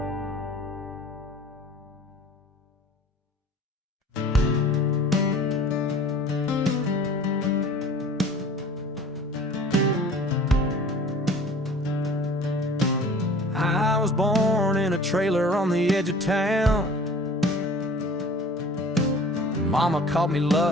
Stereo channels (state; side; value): normal; both; correlation 0.46